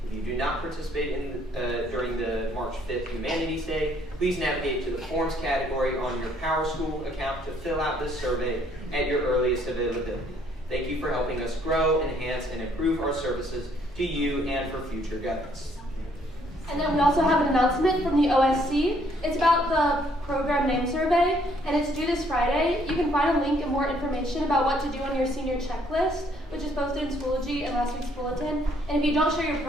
If you do not participate during the March 5th Humanities Day, please navigate to the Forms category on your PowerSchool account to fill out this survey at your earliest availability. Thank you for helping us grow, enhance, and improve our services to you and for future guidance. And then we also have an announcement from the OSC. It's about the program name survey, and it's due this Friday. You can find a link and more information about what to do on your senior checklist, which is posted in Schoology and last week's bulletin. And if you don't share your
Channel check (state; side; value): normal; both; correlation 0.66